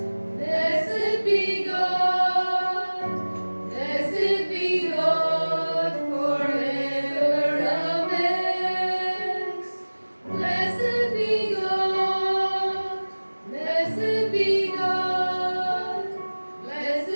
blessed be God, blessed be God forever. Amen. Blessed be God, blessed be God,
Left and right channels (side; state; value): both; inverted; correlation -1.00